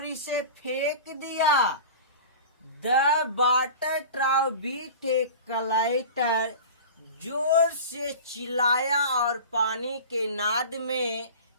इसे फेंक दिया। द वाटर ट्राउ बीट ए कलाइटर, जोर से चिल्लाया और पानी के नाद में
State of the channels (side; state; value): both; inverted; correlation -0.35